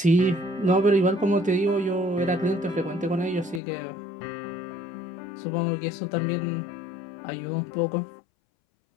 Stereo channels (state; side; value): drops out; right; at 3.6 s